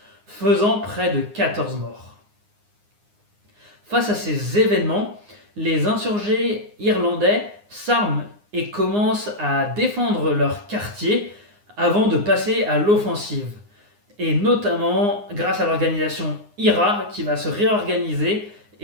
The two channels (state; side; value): late; left; 9.7 ms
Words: faisant près de 14 morts. Face à ces événements, les insurgés irlandais s'arment et commencent à défendre leur quartier avant de passer à l'offensive. Et notamment grâce à l'organisation IRA qui va se réorganiser